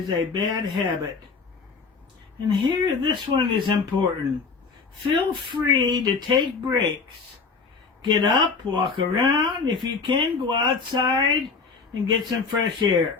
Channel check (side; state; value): right; quieter; 4.8 dB